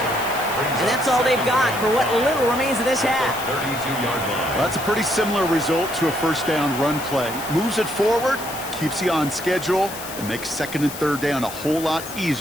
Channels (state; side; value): noise; left; hiss, 11 dB below the sound